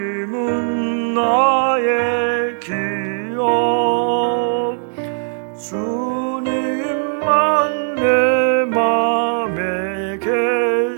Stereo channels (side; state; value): left; silent; 67 dB below the other